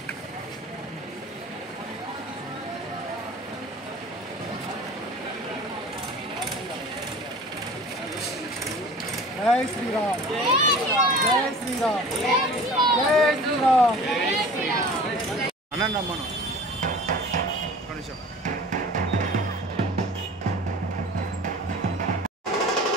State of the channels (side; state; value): both; normal; correlation 0.42